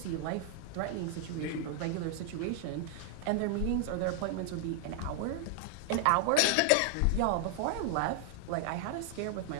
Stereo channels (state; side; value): different; both; correlation 0.00